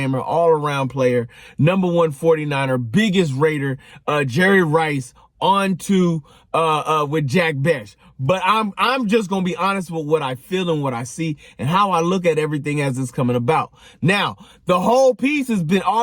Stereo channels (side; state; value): both; identical; correlation 1.00